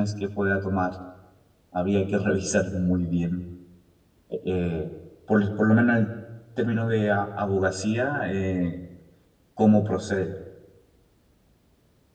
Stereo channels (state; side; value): identical; both; correlation 1.00